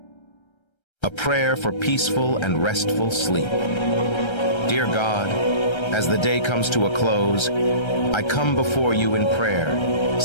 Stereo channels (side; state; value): right; late; 1.3 ms